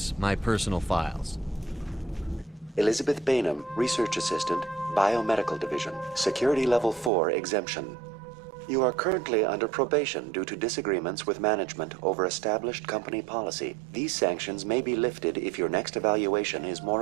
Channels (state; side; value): drops out; left; at 7.1 s